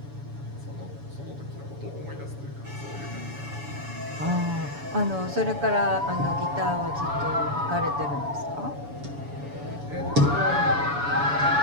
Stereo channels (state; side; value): late; left; 7.0 ms